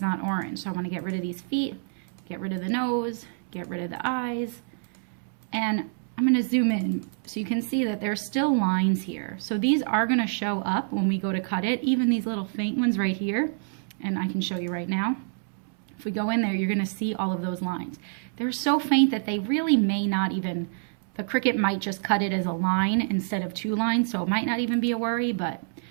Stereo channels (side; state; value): left; silent; 60 dB below the other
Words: orange. So I want to get rid of these feet, get rid of the nose, get rid of the eyes. And I'm going to zoom in so you can see that there's still lines here. So these are going to show up when we go to cut it, even these little faint ones right here. And I can show you right now. If we go in there, you're going to see all of those lines. They're so faint that they really may not even, the Cricut might just cut it as a line instead of two lines, so it might not even be a worry, but